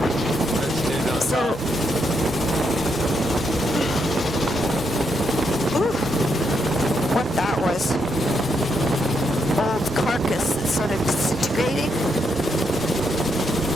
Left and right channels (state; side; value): normal; both; correlation 0.79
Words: Let's do no So, top. ooh, what that was. Old carcass that's sort of disintegrating,